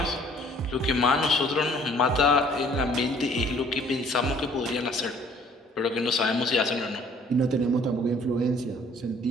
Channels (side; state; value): both; normal; correlation 0.57